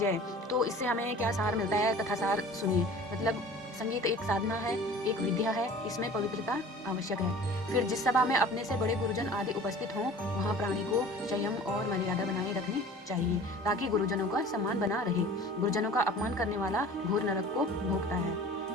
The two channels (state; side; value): normal; both; correlation 0.44